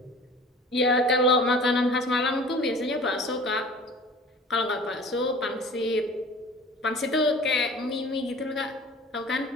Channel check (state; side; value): normal; both; correlation 0.43